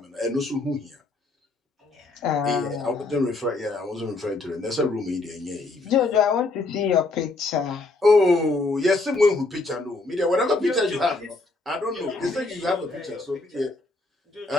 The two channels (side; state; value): right; quieter; 3.3 dB